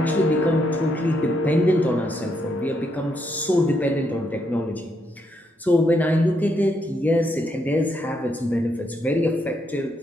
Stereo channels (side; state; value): both; normal; correlation 0.77